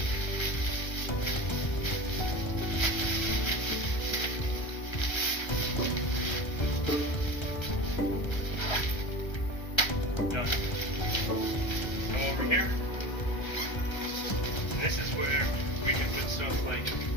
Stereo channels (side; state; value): right; late; 1.3 ms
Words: Done. Come over here. And this is where we can put stuff like